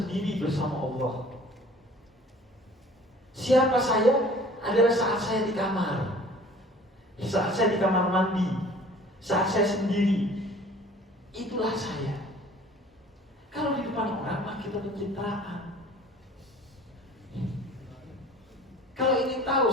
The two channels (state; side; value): normal; both; correlation 0.49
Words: bersama Allah. Siapa saya? Adalah saat saya di kamar, saat saya di kamar mandi, saat saya sendiri. Itulah saya. Kalau di depan orang mah kita pencitraan. Kalau ingin tahu